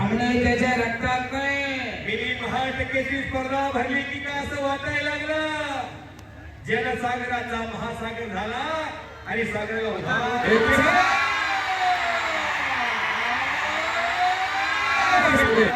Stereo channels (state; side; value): identical; both; correlation 1.00